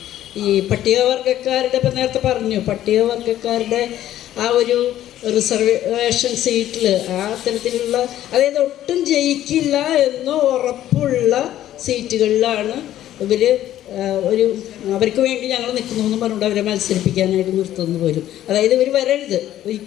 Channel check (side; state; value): right; quieter; 12.6 dB